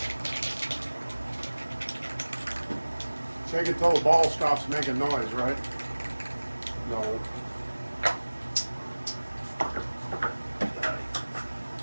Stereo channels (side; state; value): both; inverted; correlation -1.00